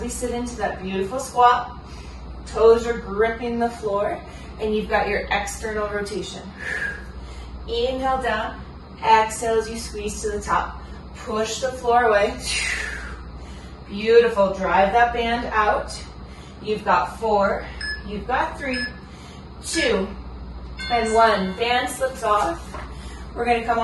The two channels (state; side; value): identical; both; correlation 1.00